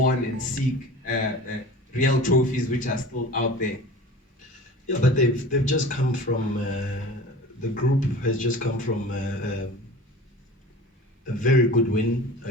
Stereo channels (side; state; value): both; normal; correlation 0.38